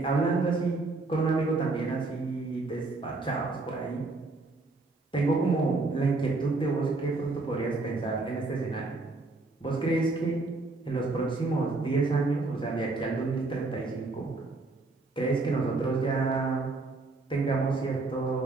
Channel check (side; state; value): left; quieter; 3.4 dB